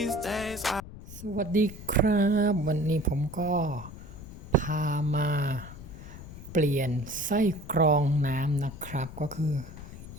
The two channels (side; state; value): left; noise; rumble, 14 dB below the sound